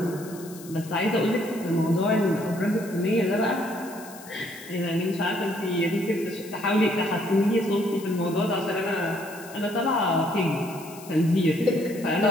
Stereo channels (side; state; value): left; noise; hiss, 18 dB below the sound